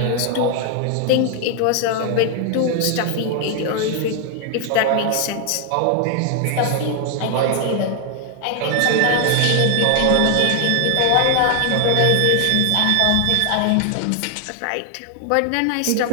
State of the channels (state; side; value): different; both; correlation 0.00